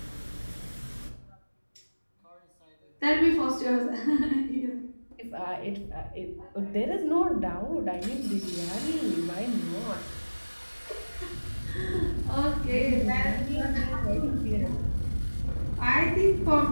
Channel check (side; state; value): both; inverted; correlation -1.00